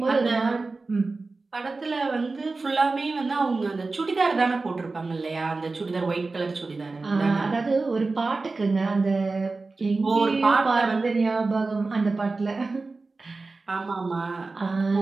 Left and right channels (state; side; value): quieter; left; 3.7 dB